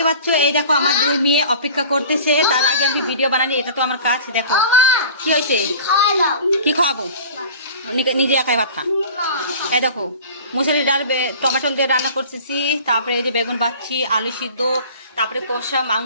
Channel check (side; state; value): both; inverted; correlation -0.42